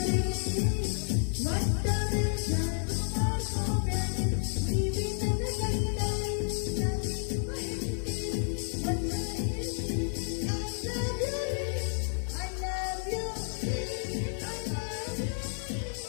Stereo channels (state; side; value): silent; right; digital silence